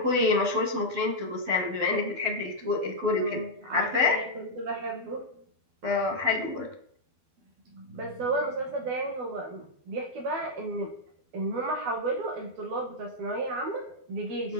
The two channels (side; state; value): left; late; 12 ms